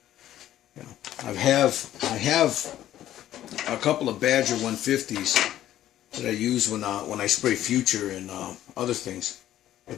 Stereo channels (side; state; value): right; quieter; 12.6 dB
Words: I have a couple of Badger 150s that I use when I spray Future and other things.